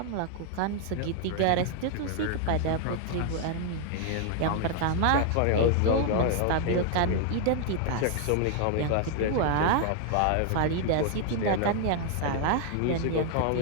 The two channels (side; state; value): both; different; correlation 0.00